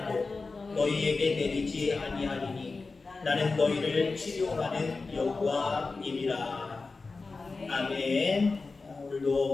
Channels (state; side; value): quieter; right; 4.0 dB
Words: 너희에게 내리지 아니하리니 나는 너희를 치료하는 여호와님이라. 아멘.